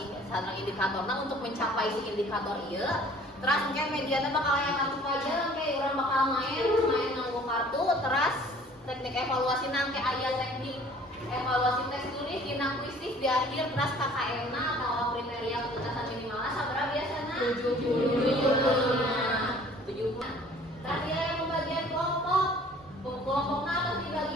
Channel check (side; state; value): both; normal; correlation 0.52